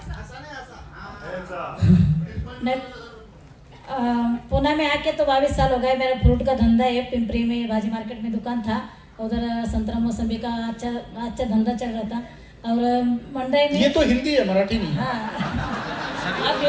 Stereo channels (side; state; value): both; identical; correlation 1.00